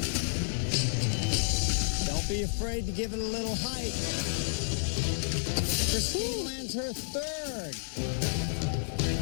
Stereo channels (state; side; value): silent; right; 57 dB below the other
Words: Don't be afraid to give it a little height. Christine lands her third.